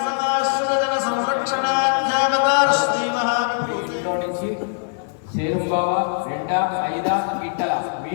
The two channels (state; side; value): silent; right; 65 dB below the other